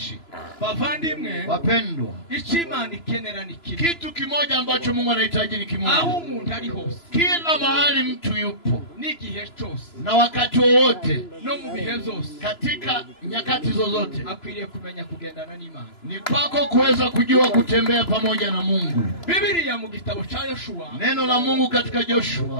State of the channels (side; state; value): right; late; 2.9 ms